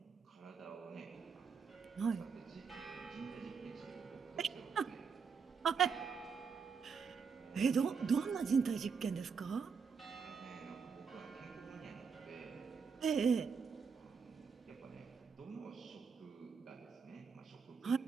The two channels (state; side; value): quieter; left; 5.8 dB